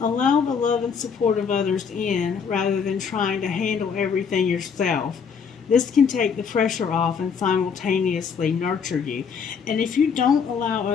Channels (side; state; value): right; quieter; 6.3 dB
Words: Allow the love and support of others in rather than trying to handle everything yourself. This can take the pressure off and simultaneously nurture you. And if you don't allow